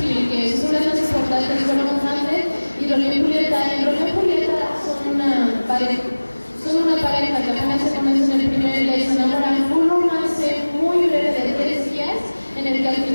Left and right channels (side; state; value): both; inverted; correlation -1.00